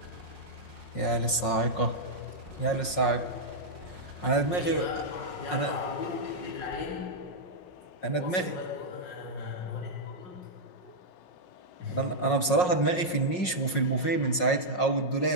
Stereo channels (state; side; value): late; right; 5.5 ms